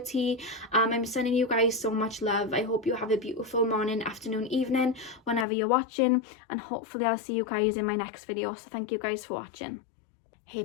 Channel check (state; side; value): drops out; right; at 5.5 s